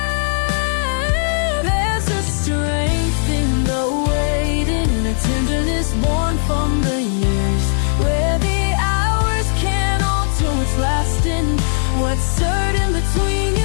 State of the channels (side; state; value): right; silent; digital silence